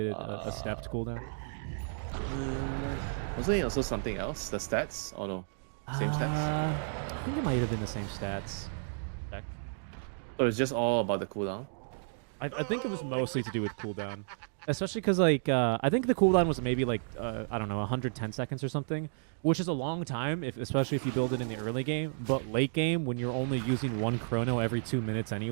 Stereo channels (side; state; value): left; silent; digital silence